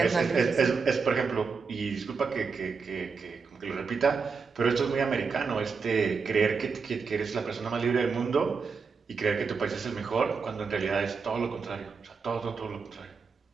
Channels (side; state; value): left; quieter; 5.2 dB